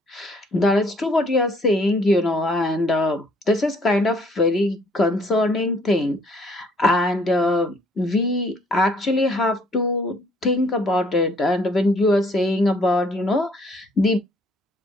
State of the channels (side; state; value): both; normal; correlation 0.62